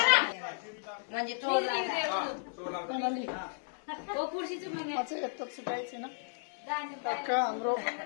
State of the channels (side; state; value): right; silent; digital silence